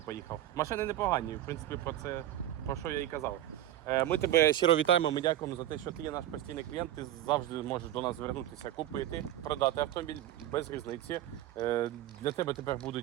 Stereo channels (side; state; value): left; quieter; 12.9 dB